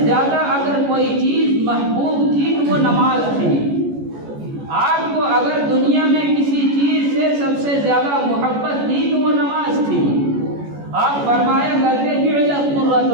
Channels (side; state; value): left; late; 14 ms